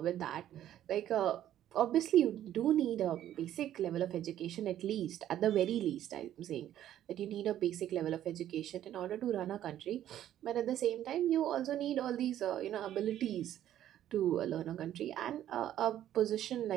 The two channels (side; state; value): left; quieter; 11.8 dB